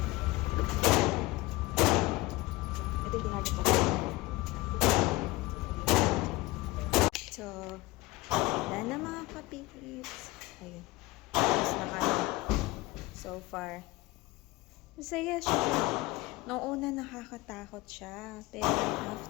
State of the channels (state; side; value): quieter; right; 20.4 dB